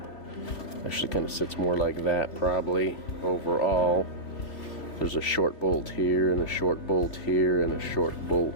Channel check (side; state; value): right; late; 2.9 ms